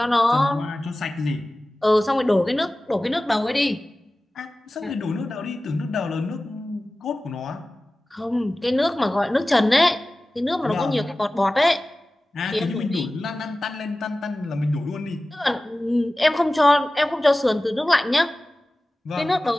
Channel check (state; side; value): normal; both; correlation 0.97